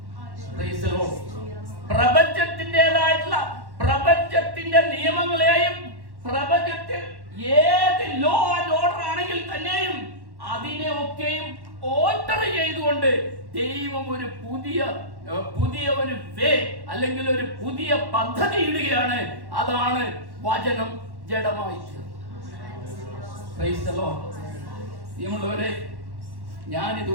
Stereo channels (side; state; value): left; late; 1.1 ms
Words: Praise the Lord. പ്രപഞ്ചത്തിന്റെ നിയമങ്ങളെയും പ്രപഞ്ചത്തിൽ ഏത് ലോ ആൻഡ് ഓർഡർ ആണെങ്കിൽ തന്നെയും അതിനെ ഒക്കെയും ഓൾട്ടർ ചെയ്തുകൊണ്ട് ദൈവം ഒരു പുതിയ ഒരു വേ അല്ലെങ്കിൽ ഒരു പുതിയ പദ്ധതി ഇടുകയാണ്. അതാണ് വചനം ജഡമായി തീർന്നത്. Praise the Lord. പ്രിയമുള്ളവരെ, ഞാനിത്